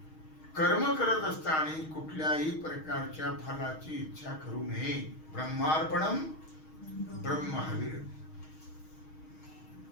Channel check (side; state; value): right; late; 6.4 ms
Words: कर्म करत असताना कुठल्याही प्रकारच्या फलाची इच्छा करू नये. ब्रह्मार्पणम ब्रह्महविर,